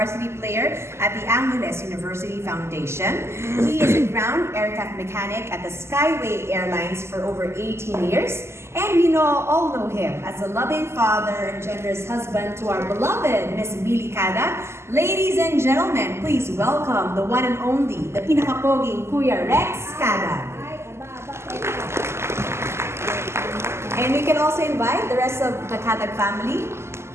player at the Angeles University Foundation. He is a ground aircraft mechanic at the Skyway Airlines for over 18 years. And we all know him as a loving father and generous husband to our beloved Miss Billy Cada. Ladies and gentlemen, please welcome the one and only, the pinakapoging Kuya Rex Cada. And we can also invite the rest of the Cadag family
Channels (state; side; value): late; left; 0.13 ms